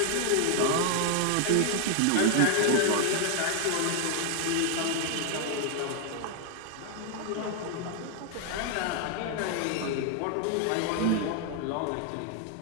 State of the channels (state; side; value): different; both; correlation 0.00